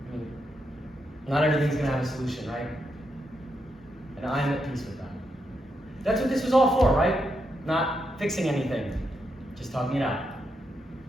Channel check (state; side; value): normal; both; correlation 0.82